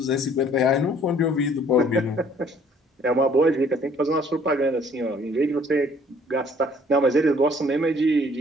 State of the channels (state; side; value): normal; both; correlation 0.58